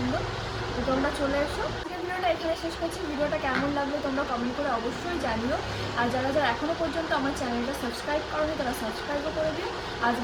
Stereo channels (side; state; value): both; identical; correlation 1.00